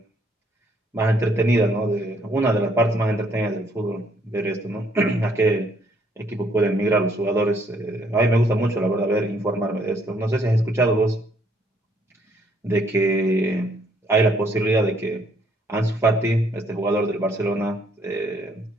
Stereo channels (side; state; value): both; normal; correlation 0.67